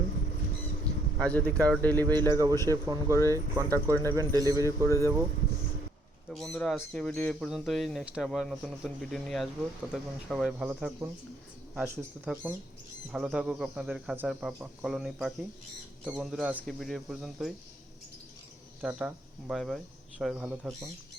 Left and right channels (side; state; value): both; normal; correlation 0.67